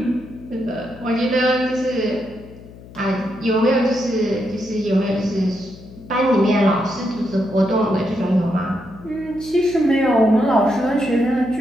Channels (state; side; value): noise; left; hum, 19 dB below the sound